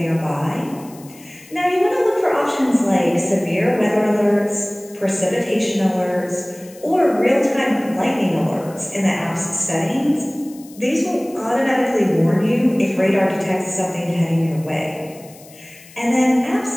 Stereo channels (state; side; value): noise; left; hiss, 22 dB below the sound